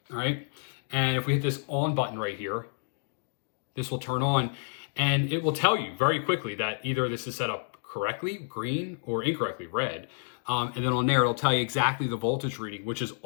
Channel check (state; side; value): silent; right; digital silence